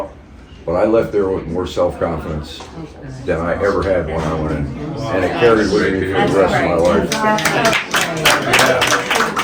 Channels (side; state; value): both; identical; correlation 1.00